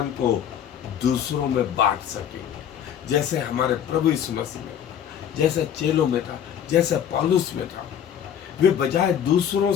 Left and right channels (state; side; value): quieter; right; 9.2 dB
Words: को दूसरों में बांट सकेंगे। जैसे हमारे प्रभु यीशु मसीह में, जैसे चेलों में था, जैसे पौलुस में था, वे बजाय दूसरों